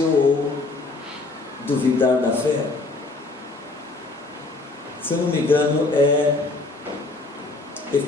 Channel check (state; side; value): quieter; right; 3.4 dB